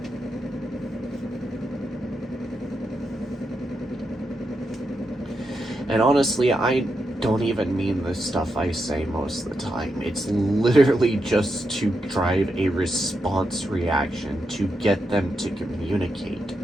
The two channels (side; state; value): both; normal; correlation 0.85